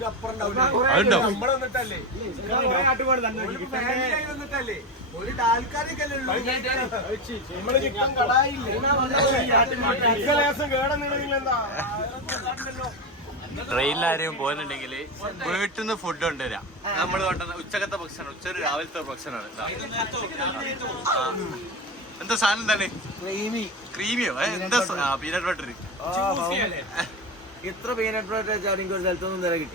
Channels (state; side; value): normal; both; correlation 0.18